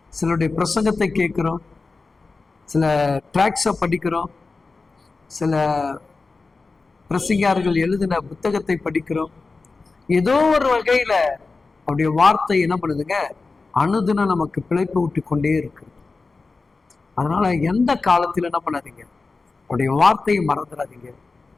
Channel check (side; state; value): right; quieter; 4.0 dB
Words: சிலருடைய பிரசங்கத்தை கேட்கிறோம், சில ட்ராக்ஸை படிக்கிறோம், சில பிரசங்கியார்கள் எழுதின புத்தகத்தை படிக்கிறோம். ஏதோ ஒரு வகையில அவருடைய வார்த்தை என்ன பண்ணுதுங்க, அனுதினம் நமக்கு பிழைப்பு விட்டு கொண்டே இருக்கு. அதனால எந்த காலத்துல என்ன பண்ணாதீங்க, அவருடைய வார்த்தையை மறந்துடாதீங்க,